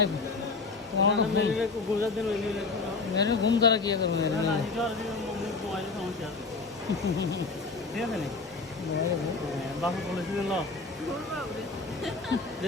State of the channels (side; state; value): right; quieter; 4.1 dB